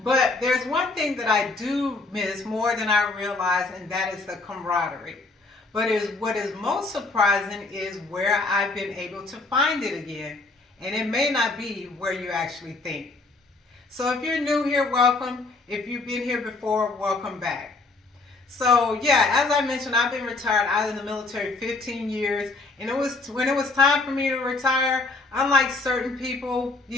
But there's one thing that I do miss more than I realize, and that is the camaraderie. But what is most surprising is where I've been able to find it again. And it may not be where you actually think. So if you're new here, welcome. If you've been here before, welcome back. So yeah, as I mentioned, I've been retired out of the military 15 years. And when it was time for me to retire, unlike certain people,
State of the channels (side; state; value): right; quieter; 3.5 dB